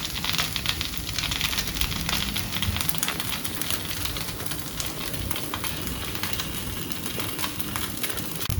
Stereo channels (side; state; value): both; identical; correlation 1.00